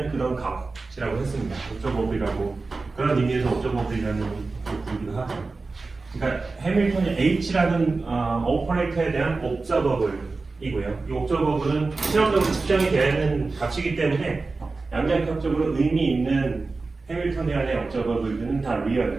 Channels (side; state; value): left; quieter; 3.8 dB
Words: 그런 값이라고 했습니다. 옵저버블이라고 그런 의미에서 옵저버블이라는 것을 부르기도 하죠. 그러니까 해밀턴이 H라는 오퍼레이터에 대한 옵저버블이고요. 이 옵저버블은 실험적으로 측정이 되는 값이기 때문에 양자역학적으로 의미 있는 해밀턴이안의 옵저버블들은 다